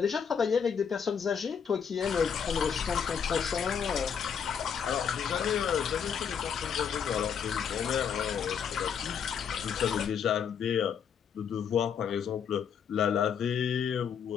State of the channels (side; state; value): right; quieter; 7.3 dB